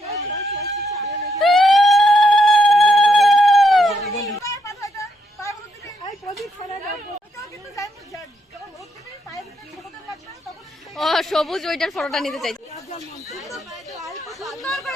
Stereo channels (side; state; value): both; normal; correlation 0.77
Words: ও সবুজ ওইটার ফটোটা নিতে চাই।